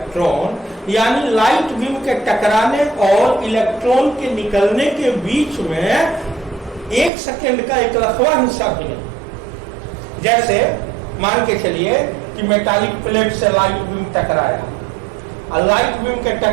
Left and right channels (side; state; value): left; drops out; at 7.1 s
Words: यानी लाइट बीम के टकराने और इलेक्ट्रॉन के निकलने के बीच में 1 सेकेंड का एक लखवा हिस्सा भी नहीं। जैसे मान के चलिए कि मेटालिक प्लेट से लाइट बीम टकराया, और लाइट बीम के